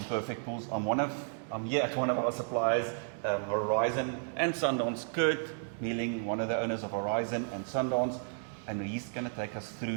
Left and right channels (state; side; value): silent; left; 56 dB below the other